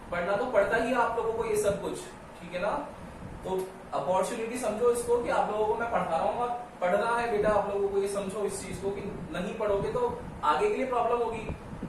पढ़ना तो पड़ता ही है आप लोगों को ये सब कुछ, ठीक है ना? तो अपॉर्चुनिटी समझो इसको कि आप लोगों को मैं पढ़ा रहा हूँ और पढ़ना है बेटा। आप लोगों को ये समझो इस चीज को कि नहीं पढ़ोगे तो आगे के लिए प्रॉब्लम होगी।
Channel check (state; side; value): identical; both; correlation 1.00